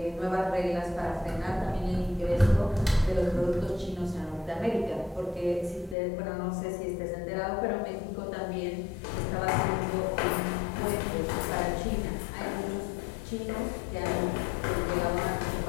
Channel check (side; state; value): right; drops out; at 6.0 s